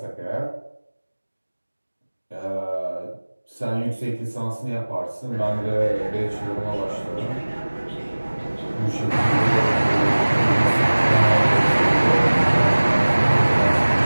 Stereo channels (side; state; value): both; inverted; correlation -1.00